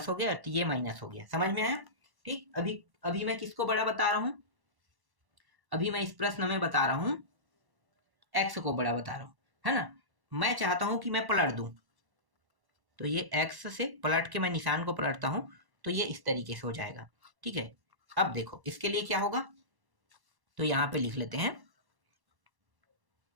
हो गया, तो ये माइनस हो गया। समझ में आया? ठीक, अभी मैं किसको बड़ा बता रहा हूँ, अभी मैं इस प्रश्न में बता रहा हूँ x को बड़ा बता रहा हूँ, है ना। मैं चाहता हूँ कि मैं पलट दूं, तो ये x से पलट के मैं निशान को पलटता हूँ तो ये इस तरीके से हो जाएगा। ठीक है, अब देखो इसके लिए क्या होगा, तो यहाँ पे लिख लेते हैं,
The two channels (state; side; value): late; left; 1.1 ms